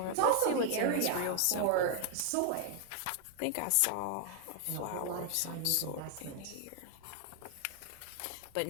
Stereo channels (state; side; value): different; both; correlation 0.00